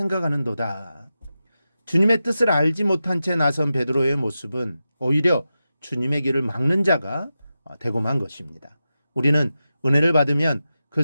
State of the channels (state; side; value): inverted; both; correlation -0.91